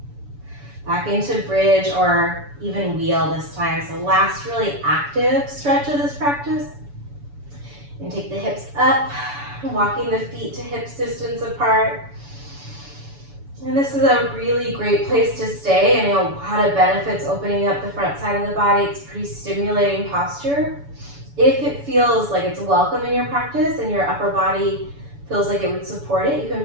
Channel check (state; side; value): late; left; 7.0 ms